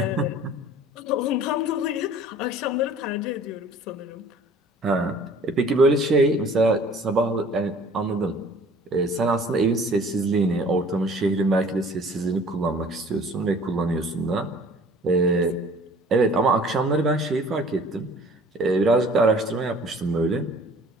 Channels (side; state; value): both; normal; correlation 0.50